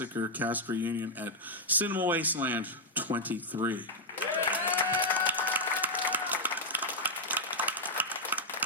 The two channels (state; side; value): normal; both; correlation -0.02